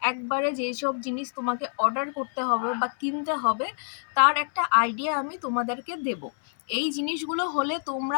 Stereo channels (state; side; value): silent; right; digital silence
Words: একবারে যেসব জিনিস তোমাকে অর্ডার করতে হবে বা কিনতে হবে তার একটা আইডিয়া আমি তোমাদেরকে দেব। এই জিনিসগুলো হলে